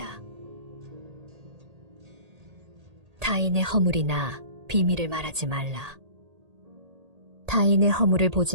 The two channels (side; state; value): left; late; 1.8 ms